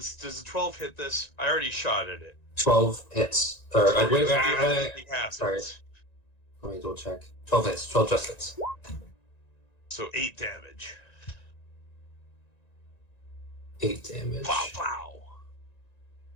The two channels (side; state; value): right; late; 1.9 ms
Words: Does the 12 hit this? I already shot at it. 12 hits. Or wait, sorry. Happens. Let me double check. 12 hits. 12 just hits. So 8 damage. 8 damage. Pow, pow.